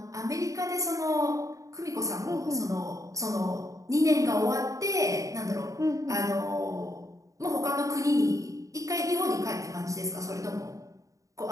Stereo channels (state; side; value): late; left; 0.16 ms